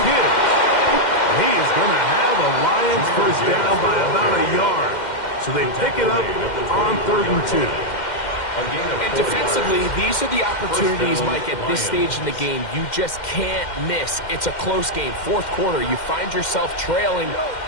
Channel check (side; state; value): right; late; 2.1 ms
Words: Gibbs. He is going to have a Lions 1st down by about a yard. So they pick it up on 3rd and 2. And defensively, these are the opportunities, Mike, at this stage in the game you just can't miss. It's a close game. 4th quarter, you find yourself trailing,